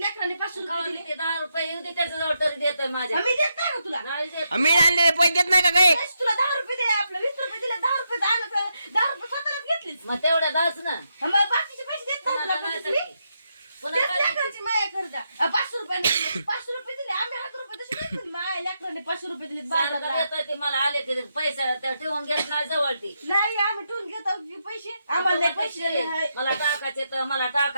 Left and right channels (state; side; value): inverted; both; correlation -0.83